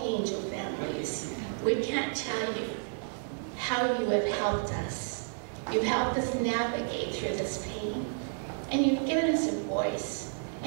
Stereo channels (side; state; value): left; silent; digital silence